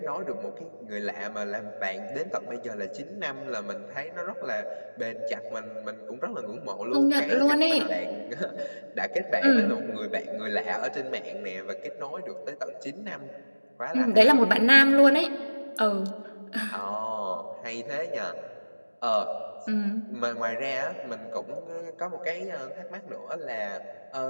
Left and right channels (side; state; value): both; inverted; correlation -1.00